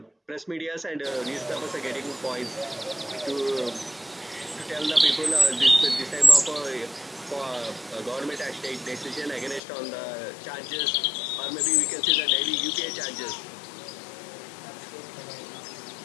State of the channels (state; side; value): drops out; right; at 9.6 s